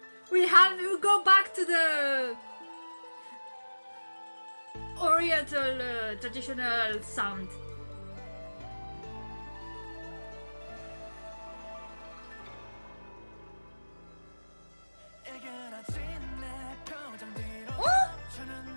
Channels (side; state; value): both; inverted; correlation -1.00